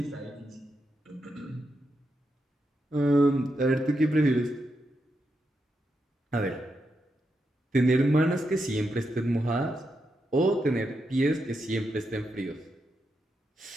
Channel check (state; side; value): normal; both; correlation 0.85